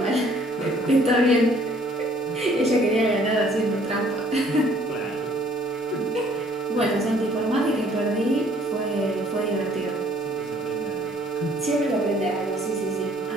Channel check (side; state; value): both; normal; correlation 0.59